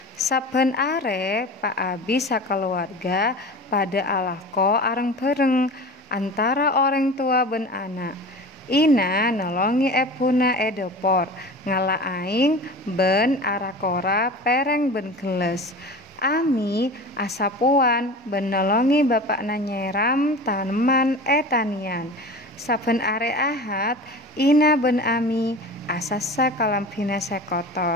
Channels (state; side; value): normal; both; correlation 0.35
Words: Saben are Pak Abi sakeluarga pada alako areng bareng antara orang tua ben anak. Ina nolongi ebuna edopor ngala aing ben arakora pereng ben geles. Ami asapuan ben nolongi bapakna nyeram taneman etanian. Saben are Ahad Ina ben Ami asasa kalampina